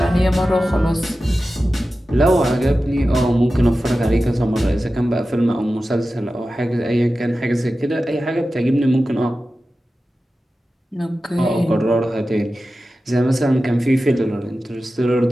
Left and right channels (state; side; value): normal; both; correlation 0.94